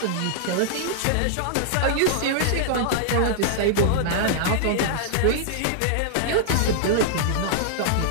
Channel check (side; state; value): both; different; correlation -0.01